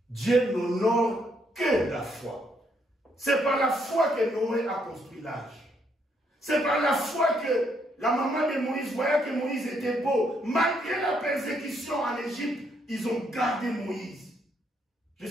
Dieu n'honore que la foi. C'est par la foi que Noé a construit l'arche. C'est par la foi que la maman de Moïse voyait que Moïse était beau. Malgré la persécution en Égypte, ils ont gardé Moïse.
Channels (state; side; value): normal; both; correlation 0.73